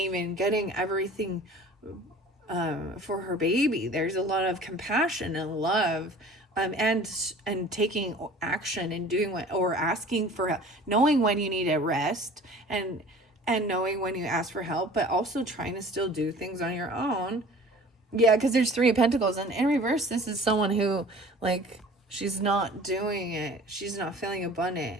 getting everything for her baby. There's a lot of compassion and love, and taking action and doing what, or asking for help, knowing when you need a rest, and knowing when you ask for help, but also trying to still do things on your own. Yeah, because there's Three of Pentacles, and in reverse, this is someone who, like, she's not doing it. She's not feeling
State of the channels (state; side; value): normal; both; correlation 0.45